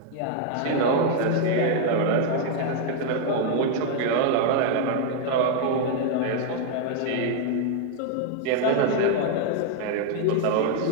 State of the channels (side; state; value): both; different; correlation 0.00